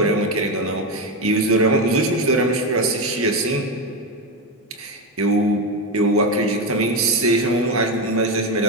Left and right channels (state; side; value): normal; both; correlation 0.13